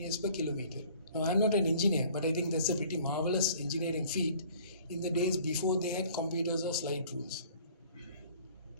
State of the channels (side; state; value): both; inverted; correlation -0.52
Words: per kilometer. Now, I'm not an engineer, but I think that's a pretty marvelous engineering feat in the days before they had computers or slide rules.